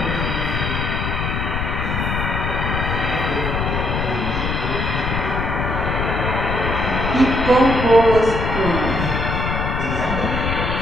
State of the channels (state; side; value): noise; left; rumble, 2 dB below the sound